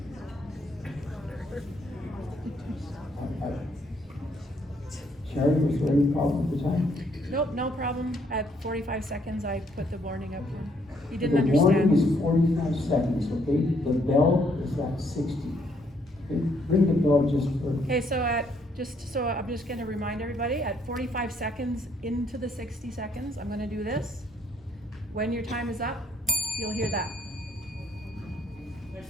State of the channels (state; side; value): normal; both; correlation 0.69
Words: Sherry, was there any problem with the time? Nope, no problem. At 45 seconds, I put the warning up here. He didn't The warning understand. is 45 seconds, okay? The bell is at 60. Okay, ring the bell just for. Okay, so I'm just gonna remind everybody, at 45 seconds into the 60 seconds, I'm gonna do this. When your time is up, you'll hear that. Ladies